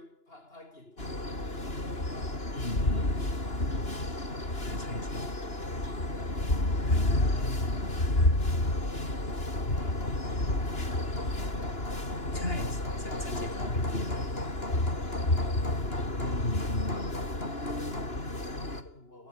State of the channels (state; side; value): late; right; 2.9 ms